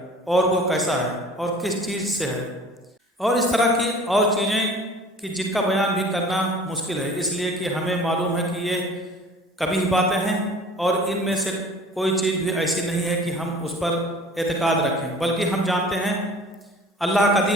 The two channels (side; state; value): both; normal; correlation 0.46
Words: اور وہ کیسا ہے اور کس چیز سے ہے، اور اس طرح کی اور چیزیں کہ جن کا بیان بھی کرنا مشکل ہے، اس لیے کہ ہمیں معلوم ہے کہ یہ کبھی باتیں ہیں اور ان میں سے کوئی چیز بھی ایسی نہیں ہے کہ ہم اس پر اعتقاد رکھیں، بلکہ ہم جانتے ہیں اللہ